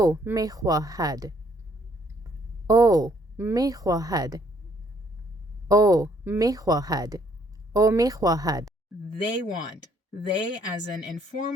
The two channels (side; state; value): both; normal; correlation 0.66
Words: میخواهد. Oh, میخواهد. Oh, میخواهد. Oh, میخواهد. They want. They as an